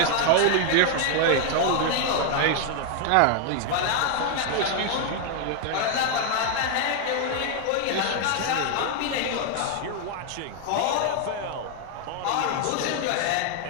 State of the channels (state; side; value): different; both; correlation 0.00